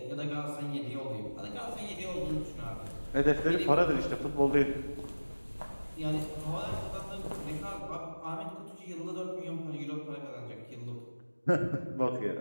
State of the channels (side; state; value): both; inverted; correlation -1.00